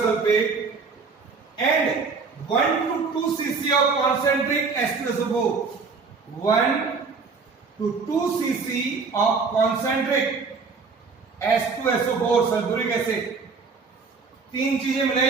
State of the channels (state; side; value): quieter; left; 4.8 dB